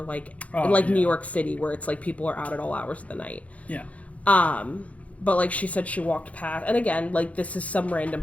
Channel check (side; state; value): right; late; 0.066 ms